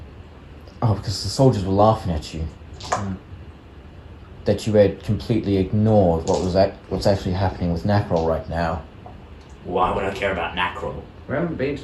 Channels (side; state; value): both; identical; correlation 1.00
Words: Oh, because the soldiers were laughing at you. Hmm. That you had completely ignored what's actually happening with Nacrol right now. Why would I care about Nacrol? We haven't been